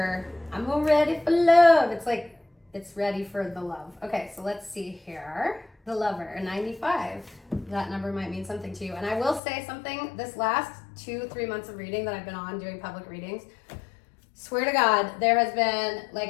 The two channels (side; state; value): right; drops out; at 9.4 s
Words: love. It's like, it's ready for the love. Okay, so let's see here. The lover, a 95. That number might mean something to you. And I will say something, this last 2-3 months of reading that I've been on doing public readings, swear to God, there has been,